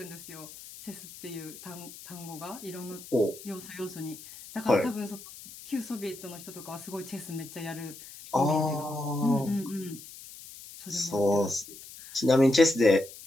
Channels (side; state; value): left; noise; hiss, 16 dB below the sound